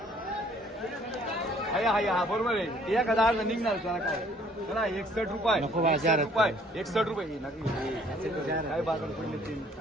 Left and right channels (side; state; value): both; normal; correlation 0.59